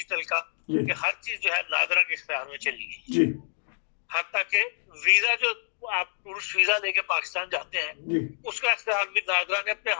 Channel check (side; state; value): right; silent; digital silence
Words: کا کہ ہر چیز جو ہے نادرا کے اختیار میں چلی گئی جی. حتیٰ کہ ویزا جو آپ ٹورسٹ ویزا لے کے پاکستان جاتے ہیں اس کا اختیار بھی نادرا نے اپنے